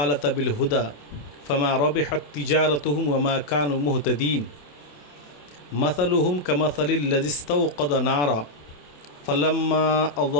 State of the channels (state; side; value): late; right; 27 ms